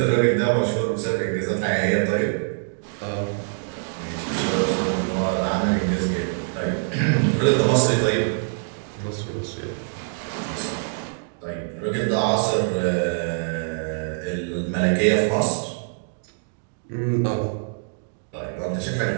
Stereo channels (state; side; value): silent; left; digital silence